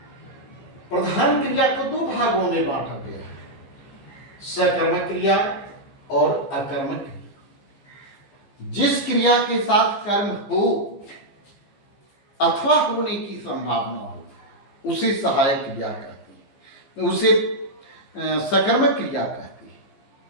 प्रधान क्रिया को दो भागों में बांटा गया है, सकर्मक क्रिया और अकर्मक क्रिया। जिस क्रिया के साथ कर्म हो अथवा होने की संभावना हो उसे सहायक क्रिया कहती है, उसे सकर्मक क्रिया कहती है।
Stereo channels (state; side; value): late; right; 15 ms